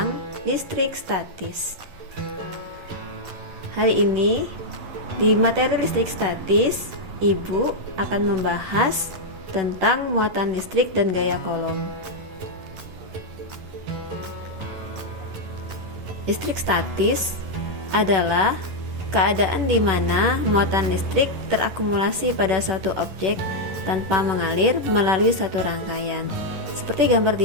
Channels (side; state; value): left; late; 11 ms